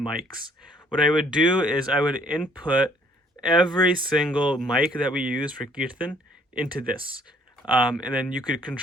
What I would do is I would input every single mic that we use for Kirtan into this. And then you could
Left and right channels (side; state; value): both; normal; correlation 0.62